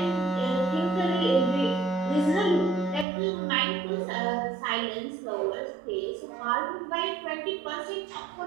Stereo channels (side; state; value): left; drops out; at 3.1 s